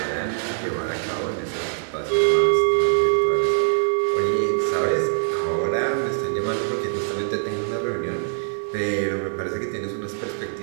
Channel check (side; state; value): left; silent; 61 dB below the other